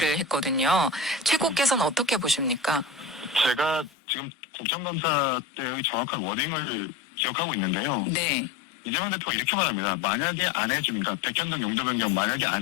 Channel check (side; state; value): right; drops out; at 3.9 s